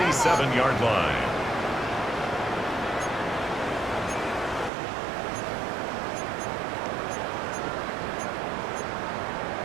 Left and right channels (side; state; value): left; drops out; at 4.7 s